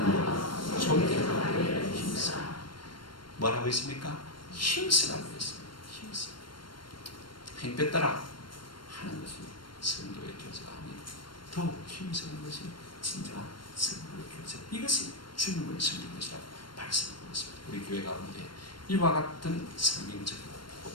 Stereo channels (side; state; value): right; late; 0.72 ms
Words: 존경하여 힘써. 뭐라고 했습니까? 힘쓰라고 했습니다. 힘써. 행패 따라 하는 것이 성도의 교제가 아니고 더욱 힘쓰는 것이 진정한 성도의 교제. 이것이 주님을 섬기는 것이라고 말씀하고 있습니다. 우리 교회 가운데 이와 같은 성경적이고